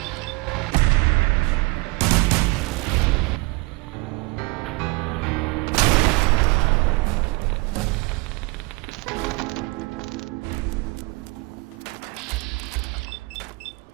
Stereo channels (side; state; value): left; quieter; 26.3 dB